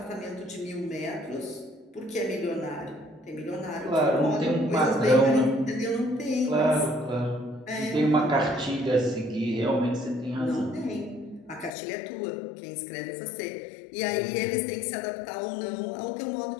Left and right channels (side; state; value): right; drops out; at 11.7 s